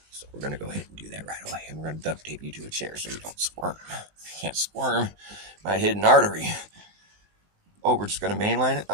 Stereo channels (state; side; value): late; left; 19 ms